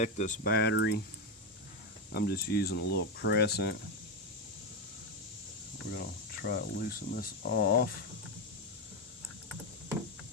this battery. I'm just using a little crescent. We're going to try to loosen this off.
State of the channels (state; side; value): normal; both; correlation 0.08